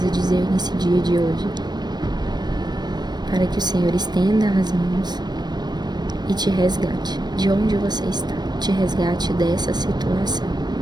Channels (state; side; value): late; left; 0.20 ms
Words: dizer nesse dia de hoje, para que o Senhor estenda as mãos e te resgate de onde você está, te resgate dessa situação.